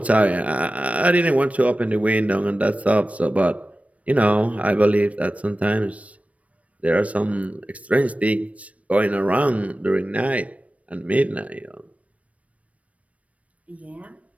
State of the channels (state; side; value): late; left; 0.066 ms